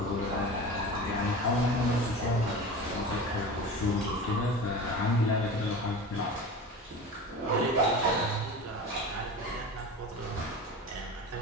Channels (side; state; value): both; normal; correlation 0.32